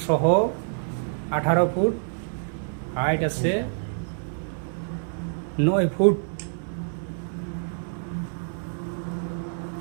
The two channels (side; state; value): left; silent; 60 dB below the other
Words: সহ 18 ফুট, হাইট আছে 9 ফুট।